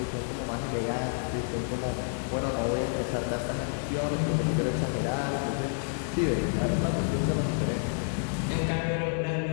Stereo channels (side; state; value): right; silent; 58 dB below the other